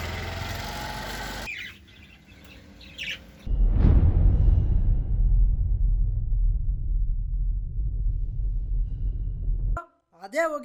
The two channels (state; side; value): identical; both; correlation 1.00